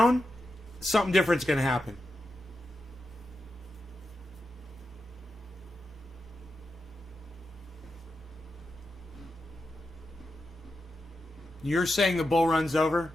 something different's going to happen. You're saying the bull run's over?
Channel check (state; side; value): normal; both; correlation 0.89